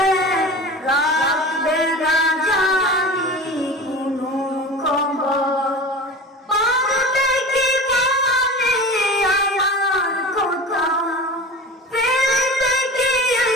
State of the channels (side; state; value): both; normal; correlation 0.33